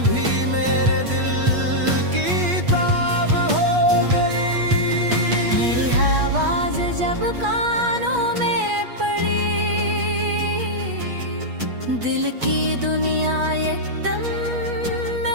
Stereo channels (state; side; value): late; left; 8.3 ms